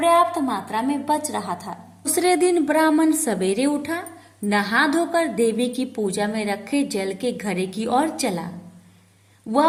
मात्रा में बच रहा था। दूसरे दिन ब्राह्मण सवेरे उठा, नहा धोकर देवी की पूजा में रखे जल के घड़े की ओर चला। वह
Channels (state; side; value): identical; both; correlation 1.00